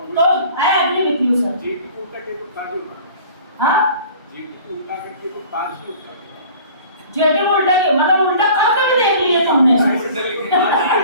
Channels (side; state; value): both; inverted; correlation -0.46